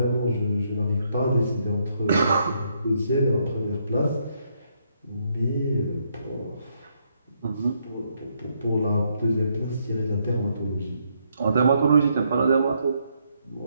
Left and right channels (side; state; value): both; inverted; correlation -0.75